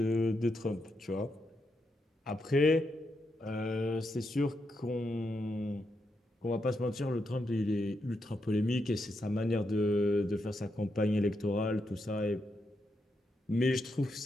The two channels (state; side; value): normal; both; correlation 0.83